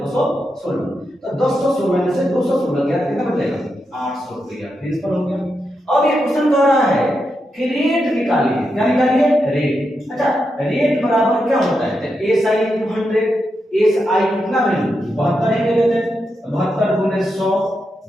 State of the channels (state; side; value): normal; both; correlation 0.85